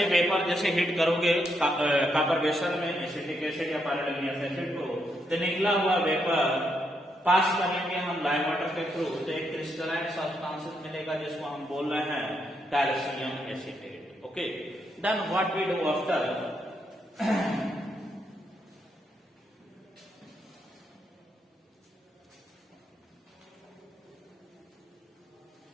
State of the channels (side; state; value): both; normal; correlation 0.79